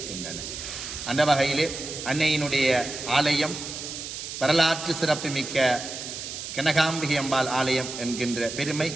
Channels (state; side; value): noise; right; hiss, 8 dB below the sound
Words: அந்த வகையிலே அன்னையினுடைய ஆலயம் வரலாற்று சிறப்புமிக்க கனகாம்பிகை அம்பாள் ஆலயம் என்கின்ற பெருமை